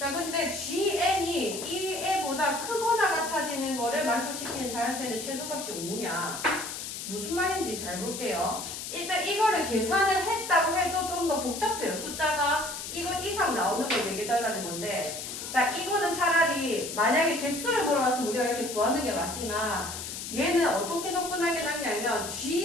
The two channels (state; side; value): noise; left; hiss, 7 dB below the sound